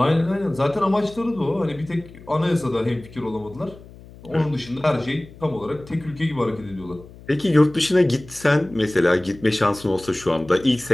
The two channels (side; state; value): left; noise; hum, 20 dB below the sound